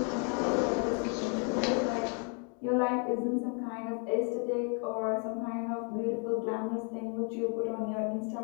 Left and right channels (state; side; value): quieter; right; 39.8 dB